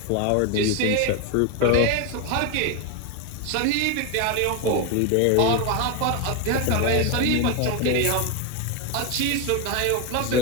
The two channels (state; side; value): different; both; correlation 0.01